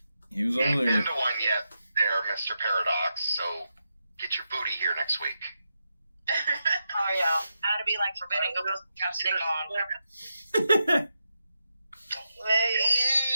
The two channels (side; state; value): both; inverted; correlation -0.86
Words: He was Ain't over been there. to one yet there, Mr. Paradox, so get your booty here next week. Oh yeah. How to be like forbidden. Go put chapstick on.